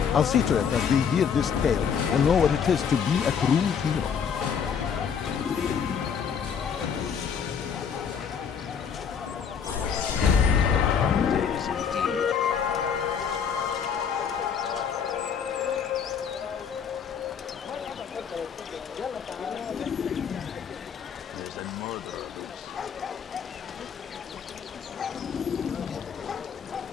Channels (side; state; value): right; quieter; 7.1 dB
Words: I'll see to it that they hear this tale and know what it is to be a true hero.